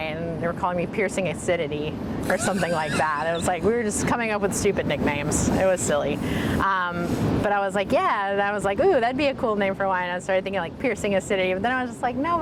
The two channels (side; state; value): both; identical; correlation 1.00